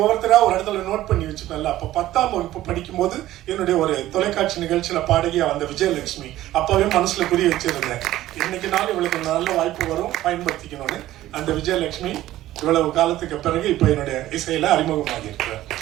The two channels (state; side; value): quieter; left; 14.7 dB